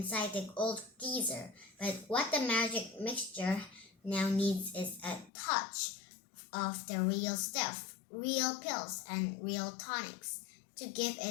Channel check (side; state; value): right; drops out; at 5.3 s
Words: the old geezer. But what the magic mixture now needs is a touch of the real stuff, real pills and real tonics to give